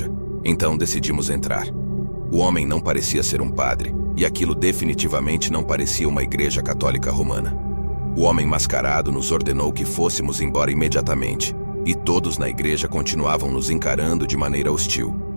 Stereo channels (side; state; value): both; inverted; correlation -1.00